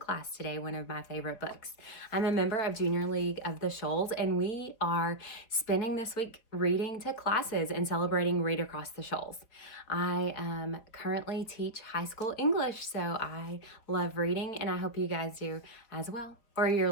today one of my favorite books. I'm a member of Junior League of the Shoals, and we are spending this week reading to classes and celebrating Read Across the Shoals. I currently teach high school English, so I love reading, and I hope you guys do as well. Or you're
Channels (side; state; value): right; late; 4.5 ms